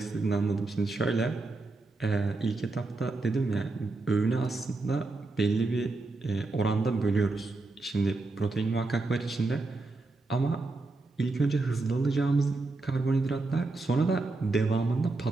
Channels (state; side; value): quieter; left; 3.4 dB